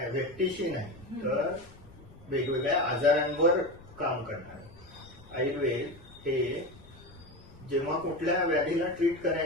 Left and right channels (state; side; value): noise; left; rumble, 22 dB below the sound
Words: व्यक्तीशी नाही तर वेगवेगळ्या आजारांवर काम करणार. आयुर्वेद हे जेव्हा कुठल्या व्याधीला ट्रीट